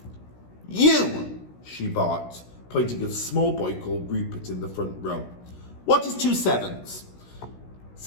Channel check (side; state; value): right; late; 16 ms